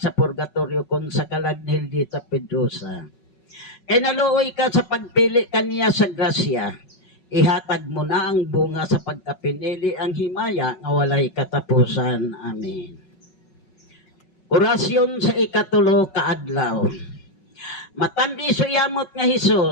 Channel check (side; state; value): right; late; 5.4 ms